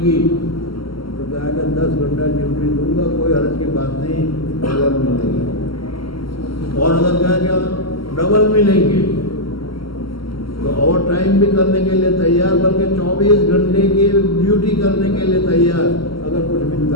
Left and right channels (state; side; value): late; right; 0.74 ms